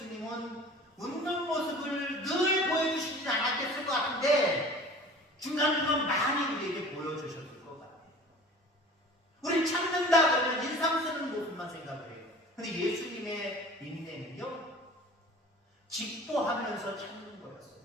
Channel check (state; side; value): normal; both; correlation 0.43